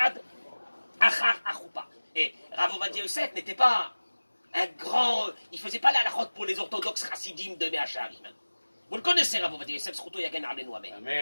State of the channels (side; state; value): both; inverted; correlation -1.00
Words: achar achoupa. Et Rav Ovadia Yosef n'était pas un grand... Il ne faisait pas la halachot pour les orthodoxes chassidim de Mea Shearim. Vous le connaissez, Rav Ovadia Yosef, Zchuto Yagen Alenu Amen.